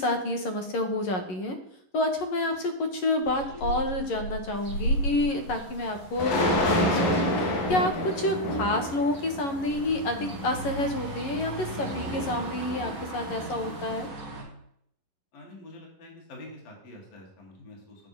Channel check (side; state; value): right; late; 11 ms